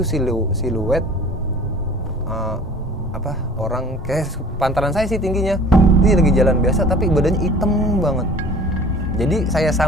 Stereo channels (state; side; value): normal; both; correlation 0.46